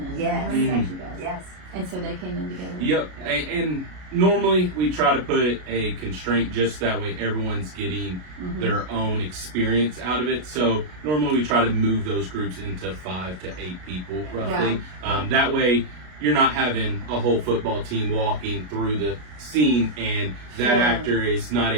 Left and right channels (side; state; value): left; late; 33 ms